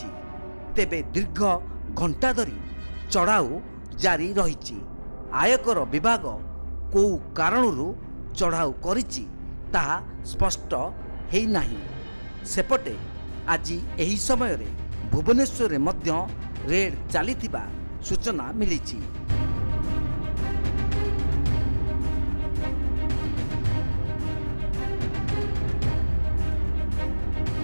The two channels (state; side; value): inverted; both; correlation -1.00